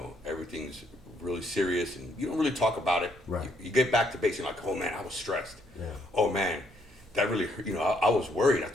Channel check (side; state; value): both; normal; correlation 0.71